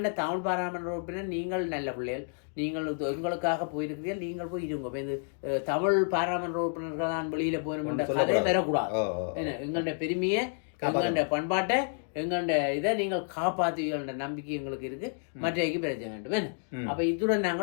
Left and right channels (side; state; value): right; silent; 58 dB below the other